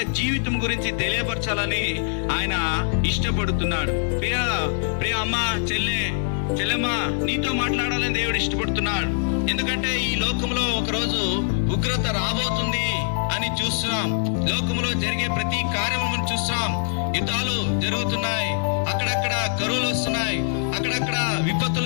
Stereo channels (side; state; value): right; silent; digital silence